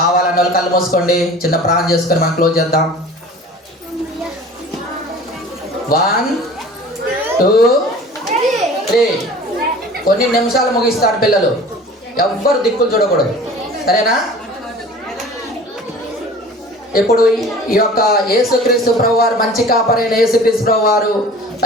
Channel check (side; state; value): both; normal; correlation 0.43